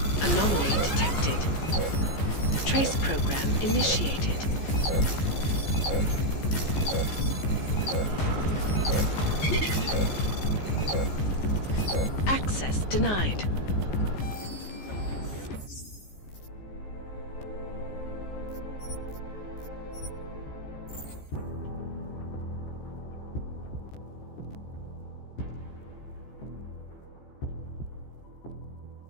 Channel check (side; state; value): right; late; 14 ms